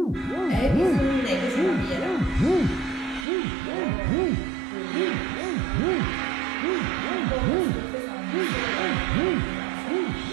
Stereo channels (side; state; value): left; drops out; at 3.2 s